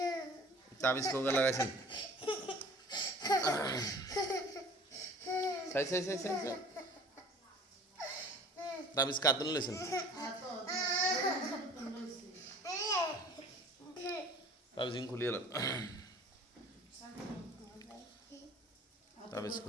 তাবিজ কোগা লাগাইছেন। সাই সাই সাই সাই তাবিজ কাতুন লইছেন। তাবিজ খুলে এলাম, তাবিজ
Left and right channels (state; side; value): normal; both; correlation 0.47